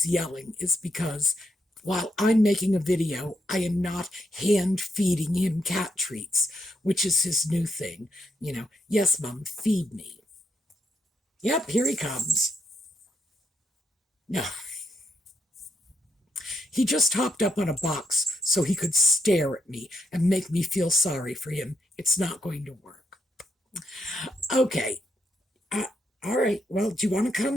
yelling is because while I'm making a video, I am not hand feeding him cat treats, which is his new thing. Yes, Mom, feed me. Yep, here he comes. No. He just hopped up on a box so he could stare at me and make me feel sorry for him. It's not going to work. Okay. All right. Well, do you want to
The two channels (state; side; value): normal; both; correlation 0.79